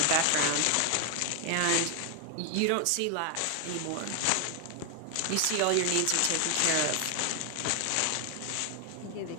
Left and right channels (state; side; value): different; both; correlation 0.00